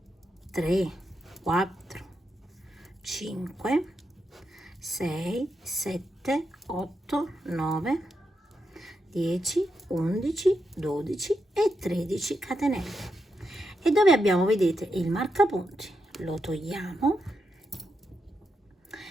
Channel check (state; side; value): normal; both; correlation 0.84